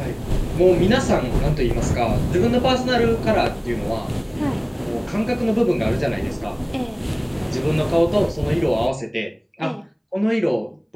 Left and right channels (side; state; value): both; identical; correlation 1.00